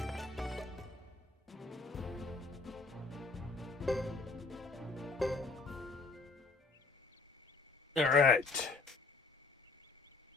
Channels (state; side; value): quieter; right; 3.9 dB